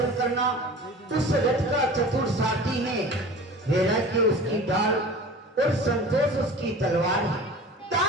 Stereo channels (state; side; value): normal; both; correlation 0.39